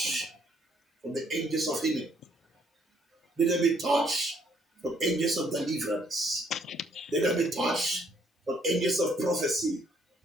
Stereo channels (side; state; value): both; normal; correlation 0.66